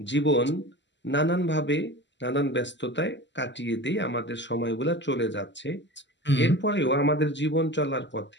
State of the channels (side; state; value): right; late; 0.53 ms